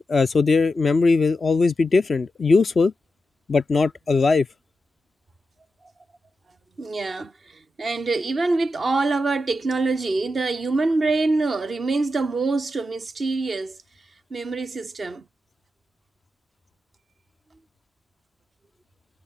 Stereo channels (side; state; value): both; normal; correlation 0.89